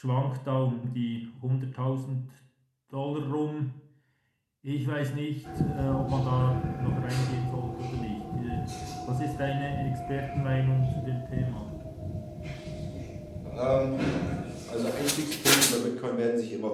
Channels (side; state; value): both; identical; correlation 1.00